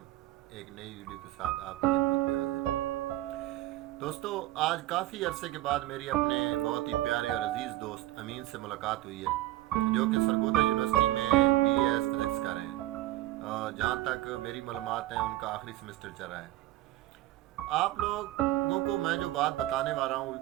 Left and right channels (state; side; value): quieter; left; 15.8 dB